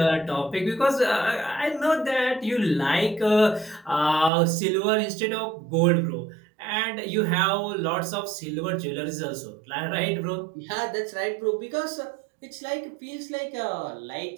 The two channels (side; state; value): left; drops out; at 4.3 s